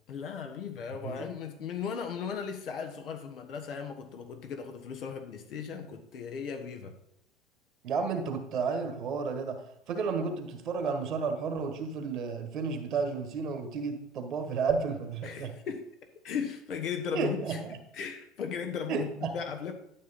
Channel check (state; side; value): normal; both; correlation 0.45